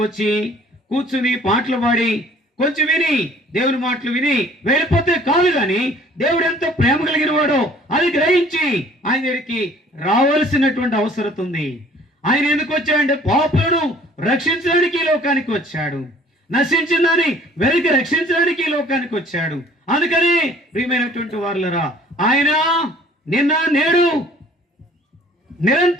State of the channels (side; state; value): both; normal; correlation 0.53